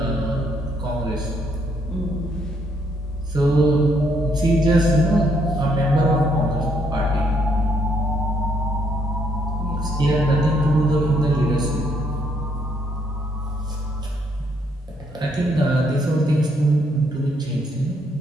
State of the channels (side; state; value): both; normal; correlation 0.71